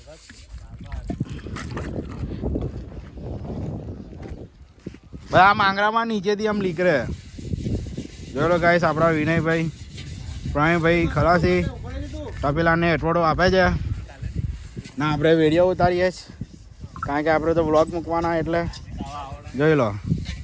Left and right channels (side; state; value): both; identical; correlation 1.00